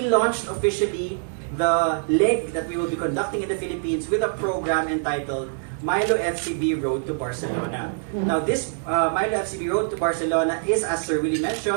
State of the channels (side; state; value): left; silent; 57 dB below the other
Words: launched officially the leg that we will be conducting in the Philippines with a program entitled MILO FCB Road to Barcelona. Now this MILO FCB Road to Barcelona is, as Sir Willie